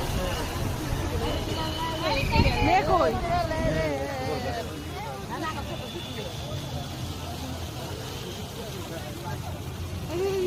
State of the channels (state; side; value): identical; both; correlation 1.00